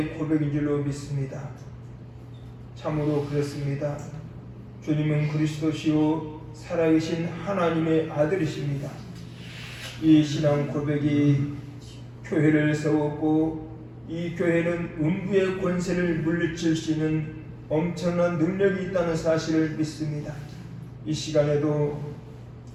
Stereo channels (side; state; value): both; identical; correlation 1.00